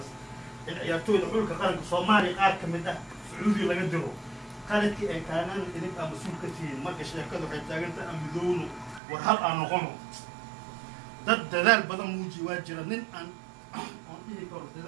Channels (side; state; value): left; drops out; at 9.0 s